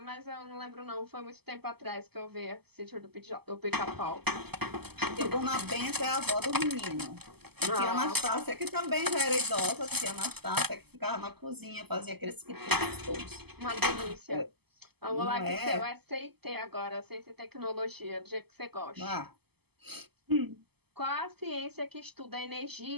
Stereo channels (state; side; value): late; left; 0.97 ms